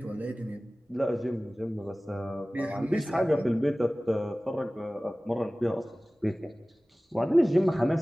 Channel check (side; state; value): both; normal; correlation 0.98